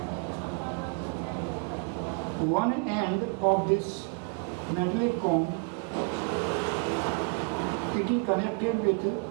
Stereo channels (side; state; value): left; quieter; 35.7 dB